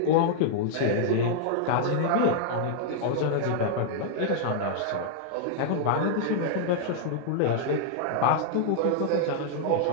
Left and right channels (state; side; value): different; both; correlation -0.01